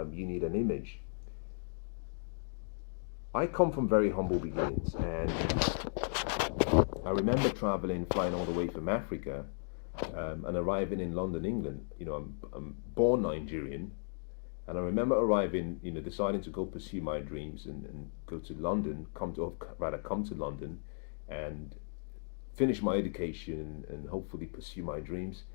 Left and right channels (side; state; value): right; silent; digital silence